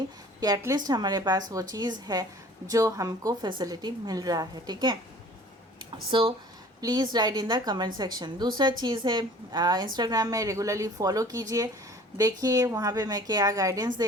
कि एटलीस्ट हमारे पास वो चीज़ है जो हमको फैसिलिटी मिल रहा है। ठीक है, so please write in the comment section. दूसरा चीज़ है इंस्टाग्राम में रेगुलरली फॉलो कीजिए, देखिए वहाँ पे मैं क्या गाइडेंस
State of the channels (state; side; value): normal; both; correlation 0.48